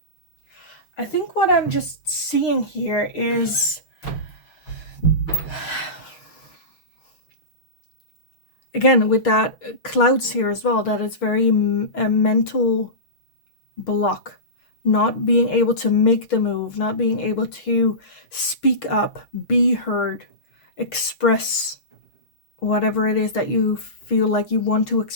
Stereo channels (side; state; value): right; late; 6.5 ms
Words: I think what I'm just seeing here is, again, with that clouds here as well, that it's very a mental block, not being able to make the move, not being able to speak up, be heard, express whatever it is that you feel like you want to